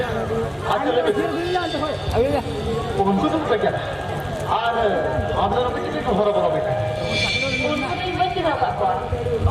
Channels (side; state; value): both; identical; correlation 1.00